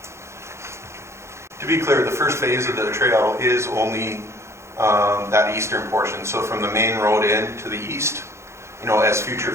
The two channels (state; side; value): late; left; 0.13 ms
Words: To be clear, the first phase of the trail is only that eastern portion. So from the main road in to the east, as future